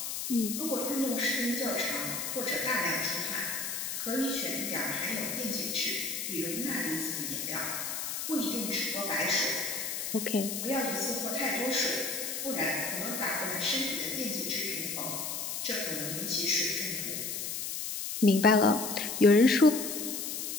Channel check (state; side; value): noise; left; hiss, 4 dB below the sound